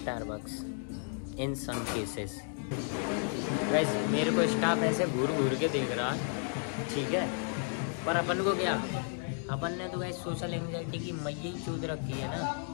in some cases. वैसे मेरे को स्टाफ ऐसे घूर घूर के देख रहा, ठीक है, पर अपन को क्या, अपन ने तो वैसे सोशल एंजाइटी की मैया ही चूद रखी है ना।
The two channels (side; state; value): right; silent; 56 dB below the other